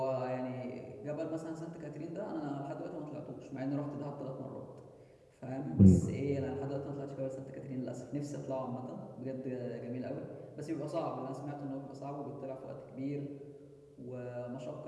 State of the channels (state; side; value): identical; both; correlation 1.00